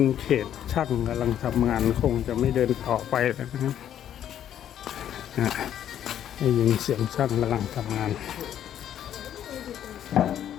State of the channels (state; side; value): quieter; right; 10.5 dB